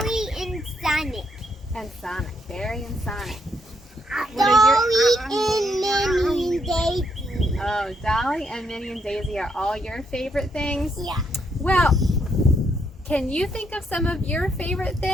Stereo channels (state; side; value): normal; both; correlation 0.75